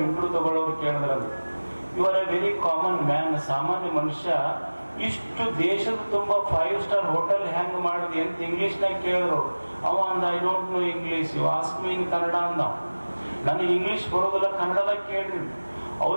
ಇಂಟರ್ವ್ಯೂ ತಗೊಳ್ಳೋರು ಕೇಳಿದ್ರಂತ, you are a very common man, ಸಾಮಾನ್ಯ ಮನುಷ್ಯ, ಇಷ್ಟು ದೇಶದ ತುಂಬಾ 5 ಸ್ಟಾರ್ ಹೋಟೆಲ್ ಹೆಂಗ್ ಮಾಡಿದ್ವಿ ಅಂತ ಇಂಗ್ಲಿಷ್ನಾಗ ಕೇಳಿದ್ರು. ಅವ ಅಂದ, I don't know English, you ask me in Kannada ಅಂದ. ನನಗೆ ಇಂಗ್ಲಿಷ್ ಬರೋದಿಲ್ಲ, ಕನ್ನಡದಾಗ ಕೇಳ್ರಿ.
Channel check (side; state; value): both; inverted; correlation -1.00